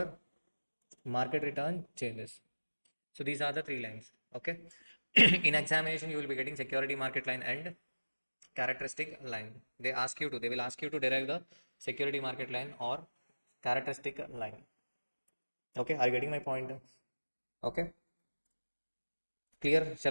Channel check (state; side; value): inverted; both; correlation -1.00